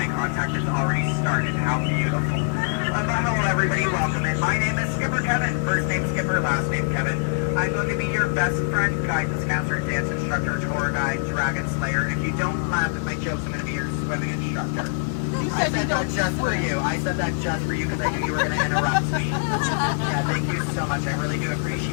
contact has already started. How beautiful. But hello everybody, welcome in. My name is Skipper Kevin. First name Skipper, last name Kevin. I'm going to be your best friend, guide, discounter, dance instructor, tour guide, dragon slayer. And if you don't laugh at my jokes, I'm going to be your swimming instructor. I said that just for you. I said that just for you because I knew you were going to interrupt me. Yeah, thank you so much. I really do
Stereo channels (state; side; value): silent; right; 63 dB below the other